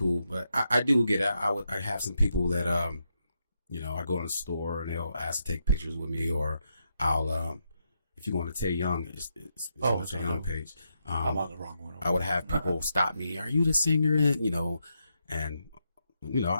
But I do get it. I have some people that, you know, I go in the store and they'll ask to take pictures with me, or I'll, if you go on the Tay Young, it's on the Tay Young page. I'm on the wrong one. I would have people stop me. Are you the singer? You know, and you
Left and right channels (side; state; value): both; inverted; correlation -0.82